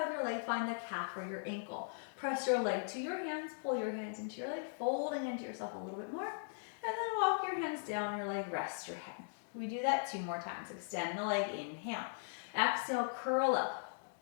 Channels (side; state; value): right; silent; digital silence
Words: of your leg, find the calf or your ankle. Press your leg to your hands, pull your hands into your leg, folding into yourself a little bit more. And then walk your hands down your leg, rest your head. We do that 2 more times. Extend the leg, inhale. Exhale, curl up,